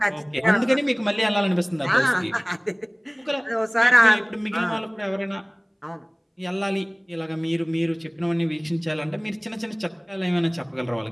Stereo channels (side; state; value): both; identical; correlation 1.00